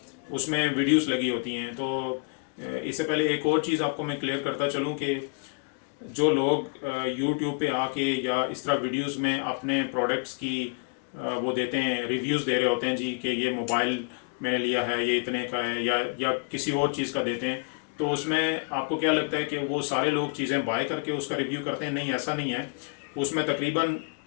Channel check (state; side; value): quieter; right; 37.9 dB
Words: उसमें वीडियोस लगी होती हैं। तो इससे पहले एक और चीज़ आपको मैं क्लियर करता चलूँ कि जो लोग यूट्यूब पे आके या इस तरह वीडियोस में अपने प्रोडक्ट्स की वो देते हैं, रिव्यूज़ दे रहे होते हैं जी कि ये मोबाइल मैंने लिया है, ये इतने का है, या किसी और चीज़ का देते हैं, तो उसमें आपको क्या लगता है कि वो सारे लोग चीज़ें बाय करके उसका रिव्यू करते हैं? नहीं, ऐसा नहीं है। उसमें तकरीबन